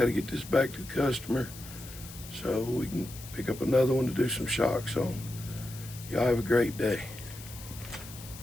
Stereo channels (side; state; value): left; noise; hiss, 15 dB below the sound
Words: to get this back to the customer so we can pick up another one to do some shocks on. Y'all have a great day.